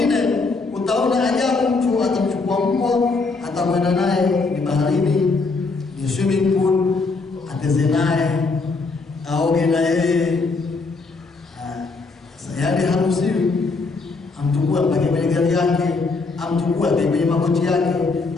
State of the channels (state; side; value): quieter; right; 4.0 dB